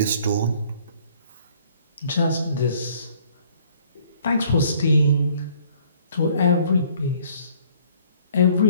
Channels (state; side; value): inverted; both; correlation -0.59